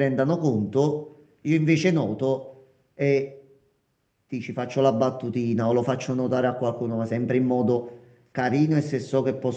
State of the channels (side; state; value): both; identical; correlation 1.00